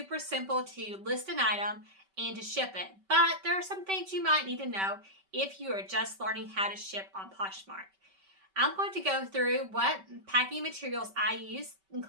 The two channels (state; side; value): late; left; 5.2 ms